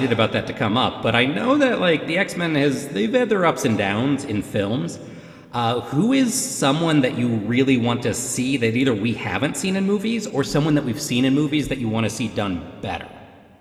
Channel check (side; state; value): both; identical; correlation 1.00